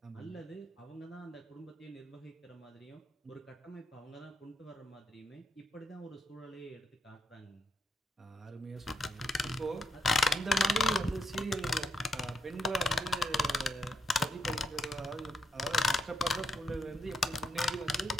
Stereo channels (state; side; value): normal; both; correlation 0.77